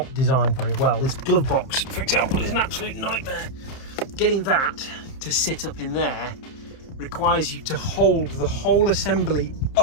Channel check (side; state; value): right; late; 30 ms